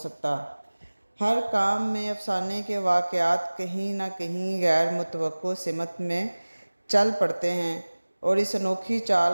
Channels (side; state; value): both; inverted; correlation -1.00